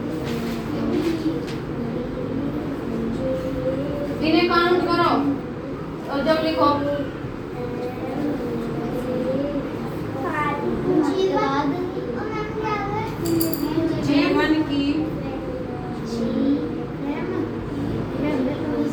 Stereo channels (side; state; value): both; identical; correlation 1.00